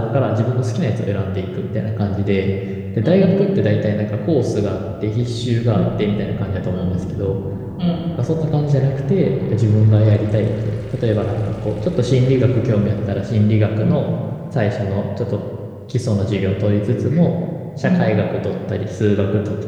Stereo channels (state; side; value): identical; both; correlation 1.00